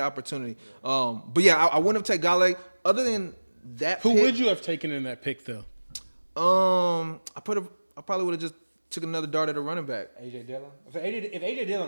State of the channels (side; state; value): both; inverted; correlation -1.00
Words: opportunity. But yeah, I wouldn't have taken Galladay. Other than that Who pick, would you have taken in that pick, though? I probably would have just took another dart at a running back. AJ Dillon. If AJ